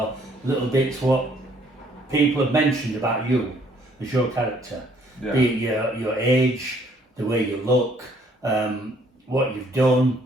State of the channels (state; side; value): normal; both; correlation 0.63